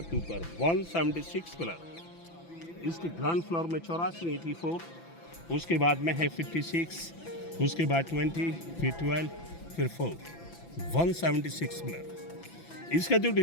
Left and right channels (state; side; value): late; right; 5.9 ms